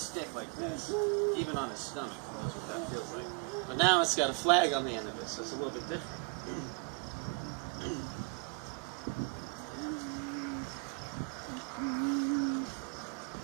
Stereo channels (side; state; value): left; quieter; 34.7 dB